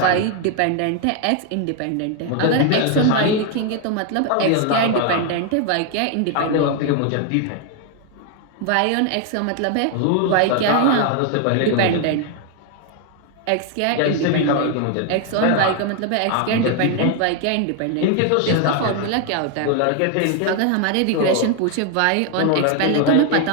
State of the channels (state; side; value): different; both; correlation 0.00